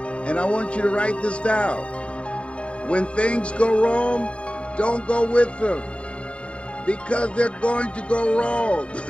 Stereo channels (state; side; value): late; right; 0.060 ms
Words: And I want you to write this down. When things go wrong, don't go with them, because they're going to go wrong.